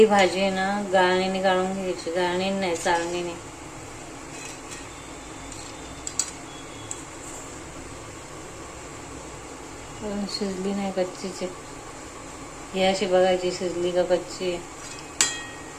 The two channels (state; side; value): identical; both; correlation 1.00